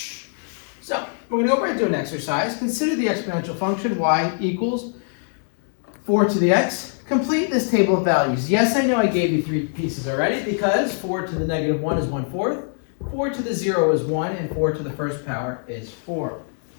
So, we're going to go right into an exercise. Consider the exponential function y equals 4 to the x. Complete this table of values. Yes, I know I gave you 3 pieces already because 4 to the negative 1 is 1/4. 4 to the 0 is 1, and 4 to the first power is 4.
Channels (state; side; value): silent; right; 63 dB below the other